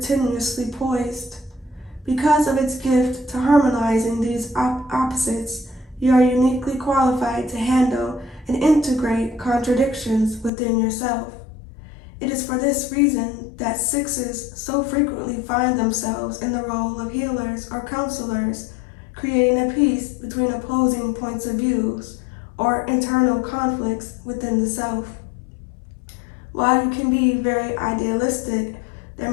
poised. Because of its gift to harmonizing these opposites, you are uniquely qualified to handle and integrate contradictions within yourself. It is for this reason that 6s so frequently find themselves in the role of healers or counselors, creating a peace between opposing points of views or internal conflicts within the self. While you can be very idealistic, there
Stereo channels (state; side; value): drops out; right; at 10.5 s